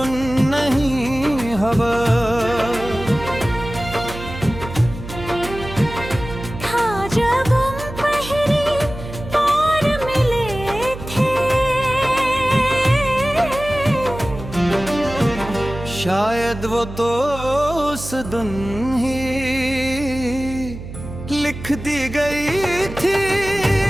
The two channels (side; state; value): right; noise; hum, 11 dB below the sound